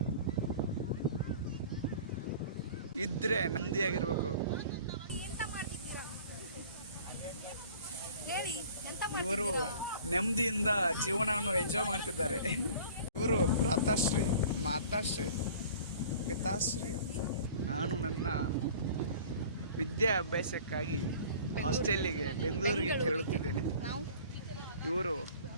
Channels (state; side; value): inverted; both; correlation -0.46